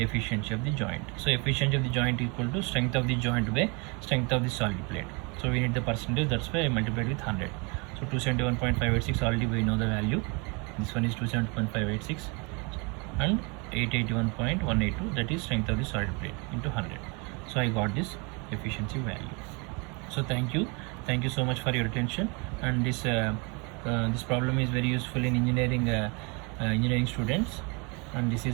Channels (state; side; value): quieter; left; 31.2 dB